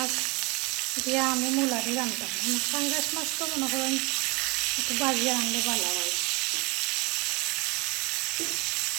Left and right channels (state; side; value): quieter; left; 27.0 dB